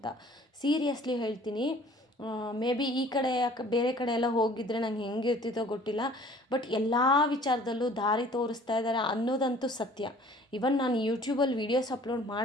ಸೀರಿಯಸ್ಲಿ ಹೇಳ್ತೀನಿ, ಮೇ ಬಿ ಈ ಕಡೆ ಬೇರೆ ಕಡೆ ಎಲ್ಲ ಹೋಗಿದ್ರೆ ನಂಗೆ ಹೆಂಗಿರ್ತಿತ್ತೋ ಗೊತ್ತಿಲ್ಲ. ಬಟ್ ಎಲ್ಲ ವಿಚಾರದಲ್ಲೂ ದಾರಿ ತೋರಿಸ್ತಾ ಇದ್ದಾರೆ ಅನ್ನೋದಂತೂ ಸತ್ಯ. ಇವನ್ ನಾನು ಯೂಟ್ಯೂಬಲ್ಲಿ ವೀಡಿಯೋಸ್ ಅಪ್ಲೋಡ್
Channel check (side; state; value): both; normal; correlation 0.52